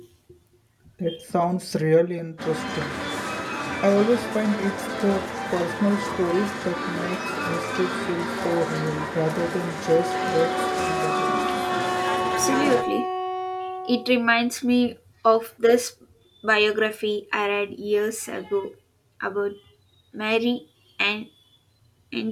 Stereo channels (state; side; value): identical; both; correlation 1.00